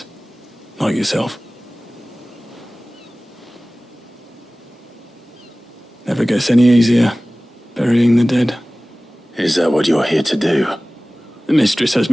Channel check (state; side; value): normal; both; correlation 0.98